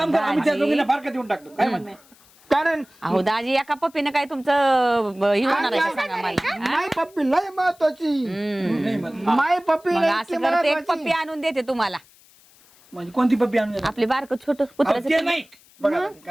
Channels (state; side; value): noise; left; hiss, 28 dB below the sound